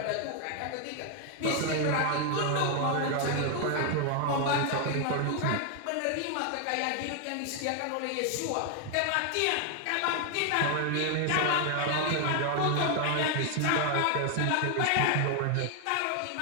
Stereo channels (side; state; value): both; different; correlation 0.00